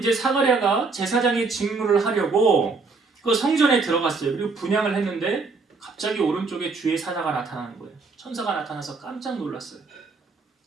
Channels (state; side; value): quieter; left; 4.2 dB